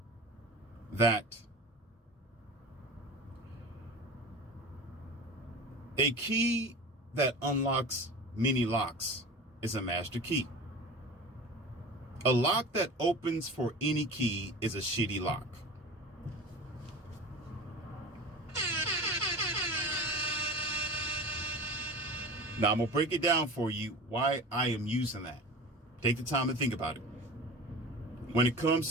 that a key that unlocks many locks is a master key. A lock that opens for any key is a shitty lock. Now I'm going to break it down for you why I am using that. Take the time to think about it. When it comes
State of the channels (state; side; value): normal; both; correlation 0.35